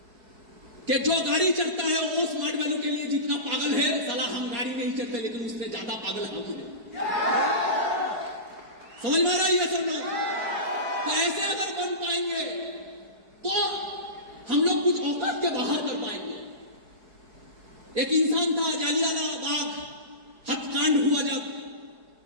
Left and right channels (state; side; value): late; left; 4.7 ms